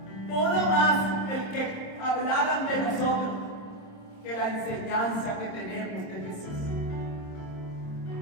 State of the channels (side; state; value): right; late; 27 ms